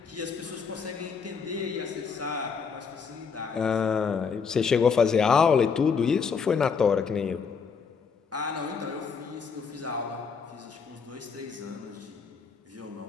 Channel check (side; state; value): right; quieter; 5.8 dB